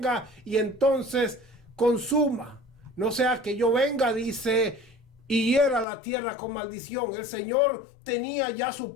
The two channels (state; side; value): drops out; right; at 5.9 s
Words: y entonces consuma, no sea que yo venga, dice, y hiera la tierra con maldición. El Señor tenía ya su